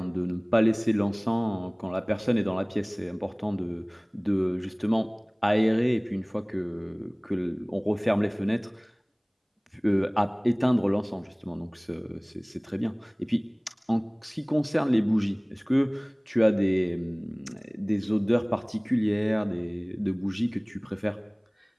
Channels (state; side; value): identical; both; correlation 1.00